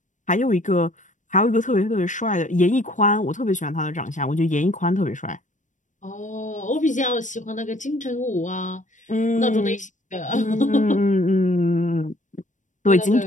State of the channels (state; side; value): late; right; 0.36 ms